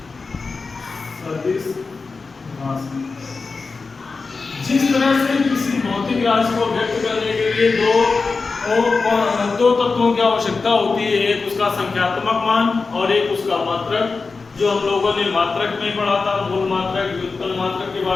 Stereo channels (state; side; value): quieter; right; 4.3 dB